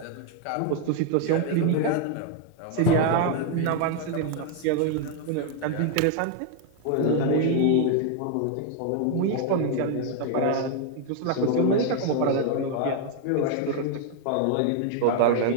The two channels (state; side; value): different; both; correlation 0.00